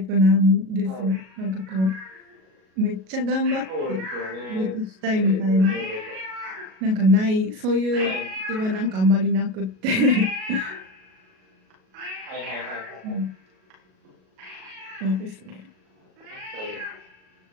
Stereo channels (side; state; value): left; late; 37 ms